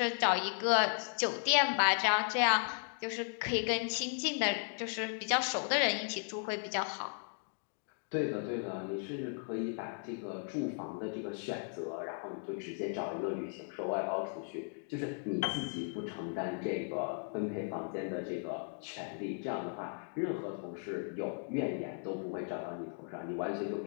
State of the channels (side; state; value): right; silent; 54 dB below the other